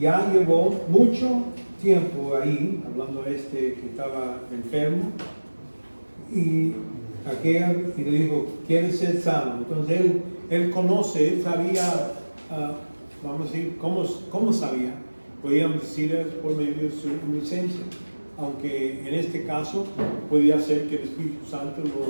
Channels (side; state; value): both; inverted; correlation -1.00